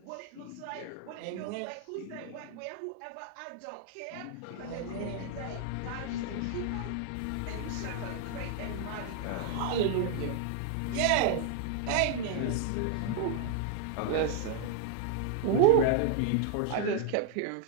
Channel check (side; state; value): both; different; correlation 0.01